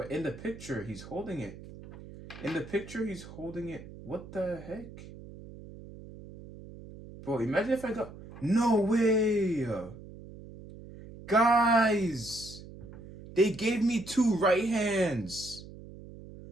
in the picture, he's holding it. What the heck? Bro, imagine if I got... No way! Guys! They gave me 2 right hands!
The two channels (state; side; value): noise; right; hum, 16 dB below the sound